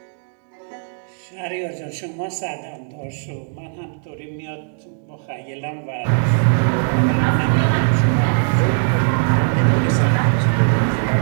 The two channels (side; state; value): left; silent; 66 dB below the other